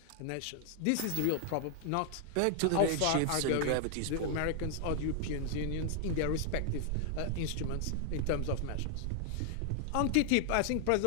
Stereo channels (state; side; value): different; both; correlation 0.00